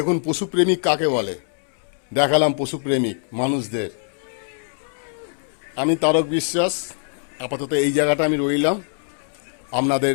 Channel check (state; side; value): silent; right; 64 dB below the other